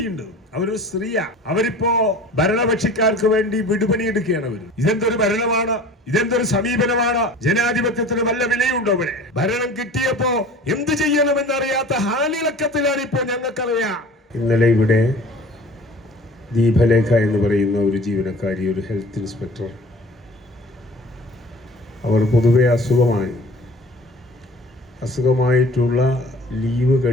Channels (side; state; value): both; normal; correlation 0.44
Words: ഉണ്ട്, അവരൊരു സ്ത്രീയാ. അവരിപ്പോ ഭരണപക്ഷിക്കാർക്ക് വേണ്ടി വിടുപണിയെടുക്കുകയാണ് അവർ. ഇതെന്തൊരു ഭരണമാണ്? ഇതെന്തൊരു സമീപനമാണ്? ജനാധിപത്യത്തിന് വല്ല വിലയുണ്ടോ? ഇവിടെ ഭരണം കിട്ടിയപ്പോ എന്ത് ചെയ്യണമെന്നറിയാത്ത ഹാലിളക്കത്തിലാണ് ഇപ്പോൾ ഞങ്ങൾക്കറിയാം. ഇന്നലെ ഇവിടെ ദീപലേഖ എന്ന് പറയുന്ന ഒരു ജീവനക്കാരി, ഒരു ഹെൽത്ത് ഇൻസ്പെക്ടർ, അവർ പൊതുവെ അസുഖമായിട്ടുള്ള ലീവ്